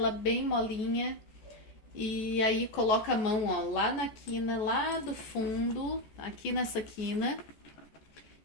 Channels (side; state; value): right; late; 14 ms